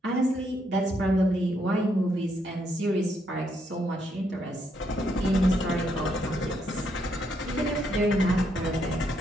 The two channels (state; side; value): normal; both; correlation 0.75